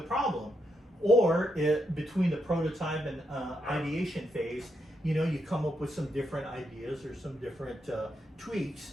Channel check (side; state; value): both; normal; correlation 0.81